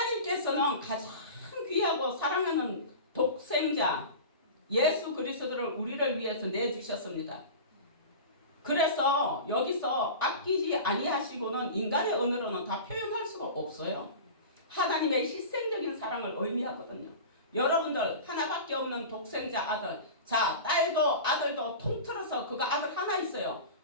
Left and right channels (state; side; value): inverted; both; correlation -0.32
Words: 가장 귀하고 사랑하는 독생자 예수 그리스도를 우리를 위해서 내주셨습니다. 그래서 여기서 아끼지 아니하시고는 인간의 언어로는 다 표현할 수가 없어요. 하나님의 희생적인 사랑을 의미하거든요. 여러분들 하나밖에 없는 독생자 아들, 자 딸도 아들도 통틀어서 그가 아들 하나 있어요.